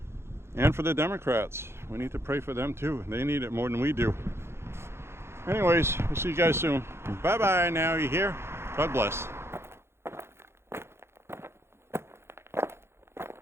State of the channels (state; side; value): late; left; 0.12 ms